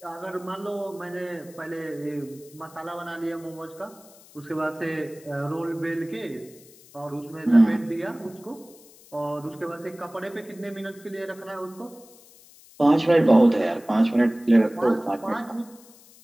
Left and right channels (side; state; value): left; noise; hiss, 24 dB below the sound